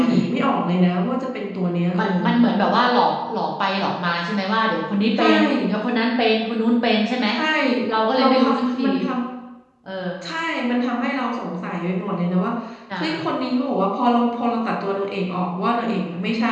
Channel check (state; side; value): identical; both; correlation 1.00